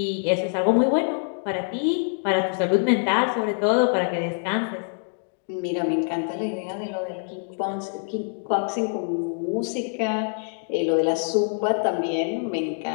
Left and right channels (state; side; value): silent; right; 62 dB below the other